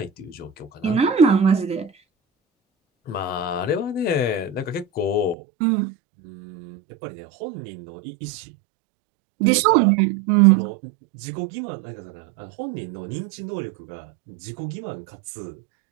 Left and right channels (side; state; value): left; drops out; at 5.4 s